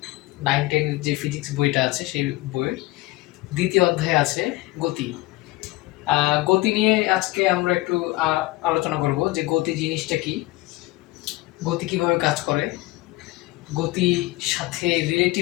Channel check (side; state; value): right; quieter; 19.5 dB